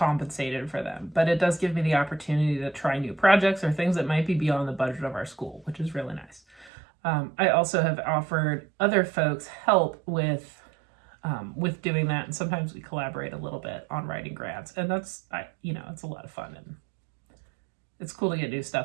for them, but it does give me the opportunity to try new projects or things that might be beyond the budget of our school, which is really nice. I also have offered other folks help with doing that, and sometimes we collaborate a little bit on writing grants, and it's a lot of fun, and it's cool to get new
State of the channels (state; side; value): drops out; left; at 6.7 s